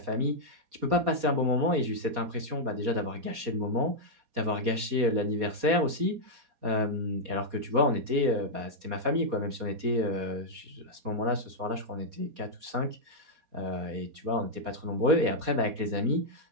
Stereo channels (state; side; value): late; left; 4.2 ms